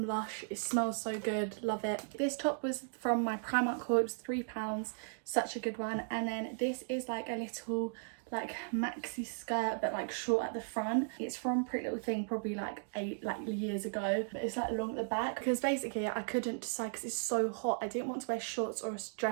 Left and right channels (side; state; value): left; silent; digital silence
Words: Lush. It smells so good, love it. This top was from my Primark haul, it was £3, such a good one. And then this is like a little like maxi skirt but like short at the front. It's from Pretty Little Thing, probably like 8 years ago, but it's like long at the back because basically I couldn't decide because it's so hot. I didn't want to wear shorts or a